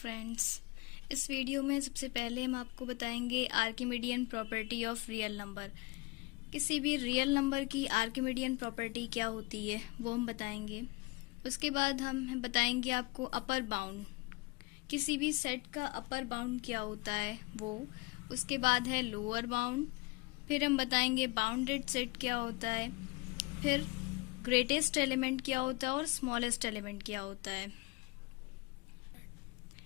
इस video में सबसे पहले हम आपको बताएंगे Archimedean property of real number. किसी भी रियल नंबर की आर्किमिडियन प्रॉपर्टी क्या होती है वो हम बताएंगे। उसके बाद हम बताएंगे आपको अपर बाउंड, किसी भी सेट का अपर बाउंड क्या होता है वो। उसके बाद है लोअर बाउंड, फिर हम बताएंगे बाउंडेड सेट क्या होता है, फिर ग्रेटेस्ट एलिमेंट क्या होता है और स्मॉलेस्ट एलिमेंट क्या होता है।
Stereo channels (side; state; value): right; quieter; 25.0 dB